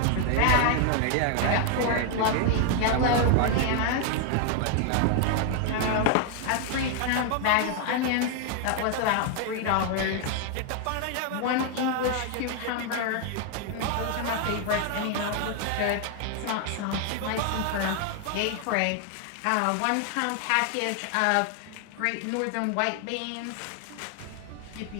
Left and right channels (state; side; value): different; both; correlation 0.00